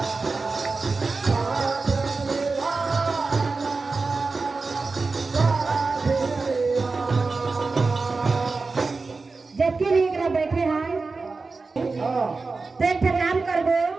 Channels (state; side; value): quieter; left; 4.0 dB